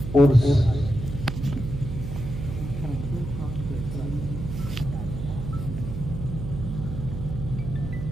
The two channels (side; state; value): right; noise; hum, 6 dB below the sound